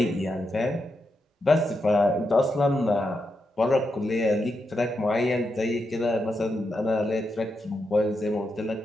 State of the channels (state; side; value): normal; both; correlation 0.85